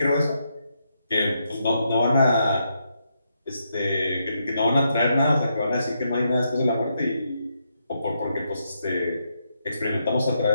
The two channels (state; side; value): inverted; both; correlation -0.80